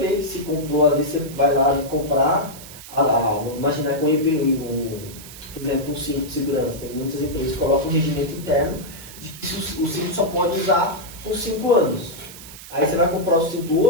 que se comprou, às vezes você vai lá comprar, imaginar com o EPI, por exemplo, um cinto de segurança. Tem muitas empresas que colocam um regimento interno de que o cinto só pode usar por 5 anos. Aí você vai comprar o cinto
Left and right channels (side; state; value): right; noise; hiss, 15 dB below the sound